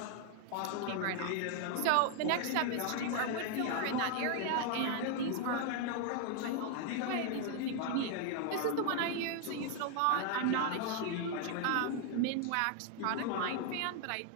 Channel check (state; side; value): different; both; correlation 0.00